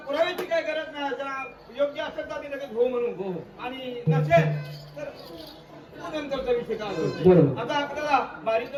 पुराव्याची काही गरज नाही. जर योग्य असेल तर आम्ही लगेच हो म्हणू हो. आणि नसेल तर नंतरचा विषय काय असतो. बरोबर. आता आपल्याला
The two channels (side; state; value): both; identical; correlation 1.00